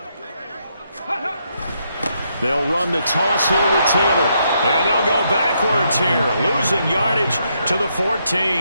They'll run the toss here with Taylor. And they'll go backwards here, losing yardage to the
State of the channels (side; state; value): both; inverted; correlation -0.77